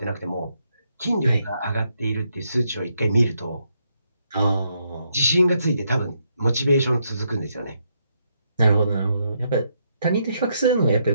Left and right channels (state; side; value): inverted; both; correlation -0.77